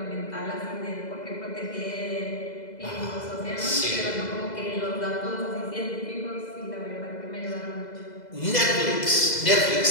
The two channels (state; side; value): late; right; 2.0 ms